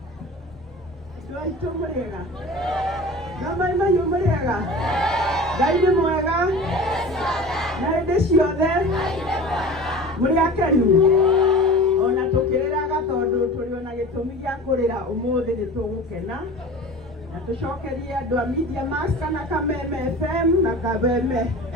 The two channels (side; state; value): both; normal; correlation 0.37